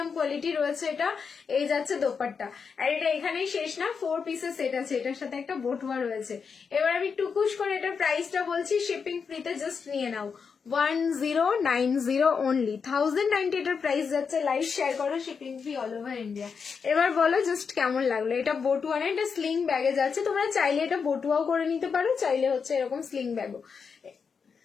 কোয়ালিটি রয়েছে এটা। এই যাচ্ছে দোপাট্টা, আর এটা এখানেই শেষ না, 4 পিসের সেট আছে, এটার সাথে একটা বটুয়া রয়েছে। এবার আমি টুকুস করে এটার প্রাইসটা বলছি, শিপিং ফ্রিতে জাস্ট নিয়ে নাও 1090 অনলি, 1090 এটার প্রাইস যাচ্ছে। লাইভ শেয়ার করো, shipping free all over India. এবার বলো জাস্ট কেমন লাগলো। এটা বটুয়া না, এটা স্লিং ব্যাগে যাচ্ছে, তোমরা চাইলে এটা বটুয়াও করে নিতে পারো, চাইলে হচ্ছে এরকম স্লিং ব্যাগও।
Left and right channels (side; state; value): right; quieter; 5.8 dB